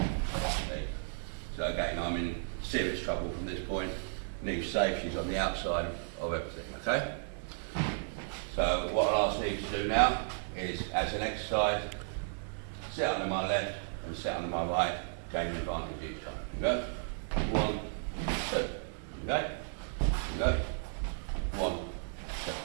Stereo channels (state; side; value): silent; left; digital silence